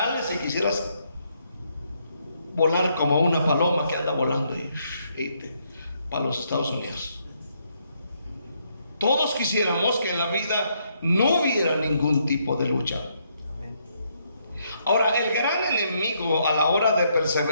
y quisieras volar como una paloma que anda volando para los Estados Unidos. Todos quisiéramos que en la vida no hubiera ningún tipo de lucha. Ahora, el gran enemigo a la hora de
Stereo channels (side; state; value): both; inverted; correlation -0.74